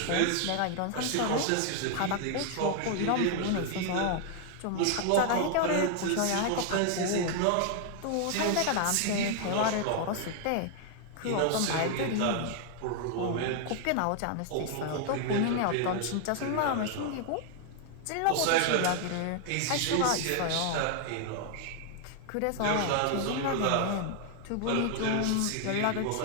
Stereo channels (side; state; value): both; different; correlation 0.00